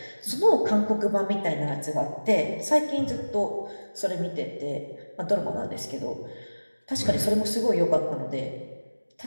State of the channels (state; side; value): inverted; both; correlation -1.00